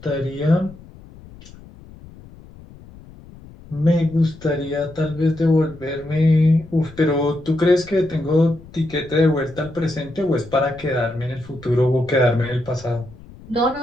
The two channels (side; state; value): left; noise; rumble, 20 dB below the sound